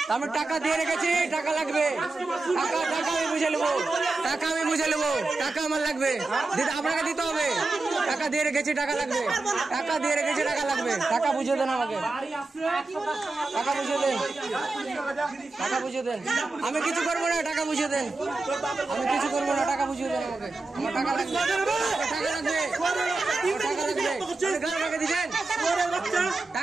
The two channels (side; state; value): left; quieter; 3.4 dB